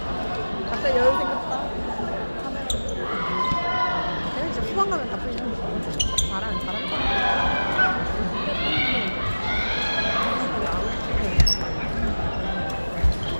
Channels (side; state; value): both; inverted; correlation -1.00